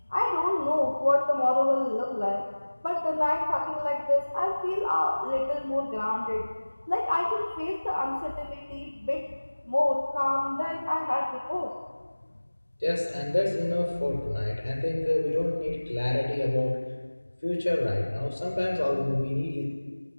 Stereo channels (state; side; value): inverted; both; correlation -1.00